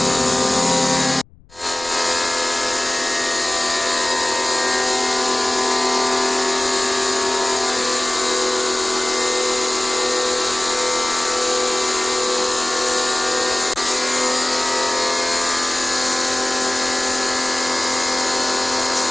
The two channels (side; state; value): left; noise; rumble, 26 dB below the sound